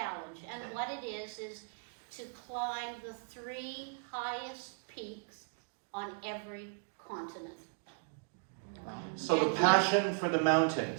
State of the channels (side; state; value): left; silent; 53 dB below the other